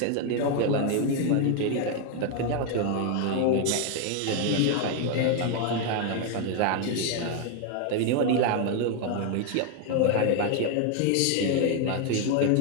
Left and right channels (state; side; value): different; both; correlation 0.01